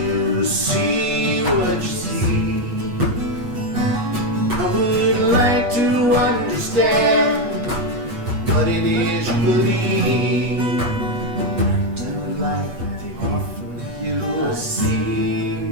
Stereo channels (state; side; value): late; left; 8.3 ms